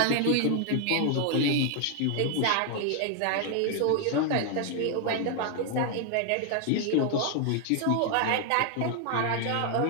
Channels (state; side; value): different; both; correlation 0.00